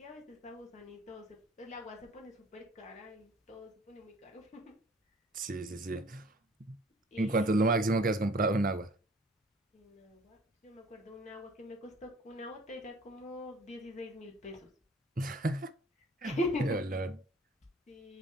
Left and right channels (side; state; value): both; normal; correlation 0.52